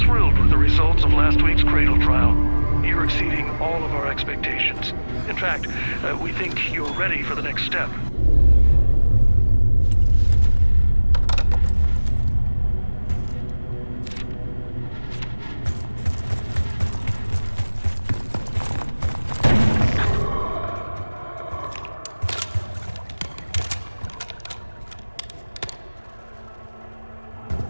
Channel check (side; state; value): both; inverted; correlation -1.00